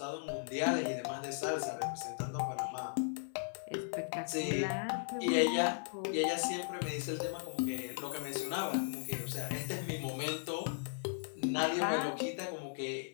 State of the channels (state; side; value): silent; right; digital silence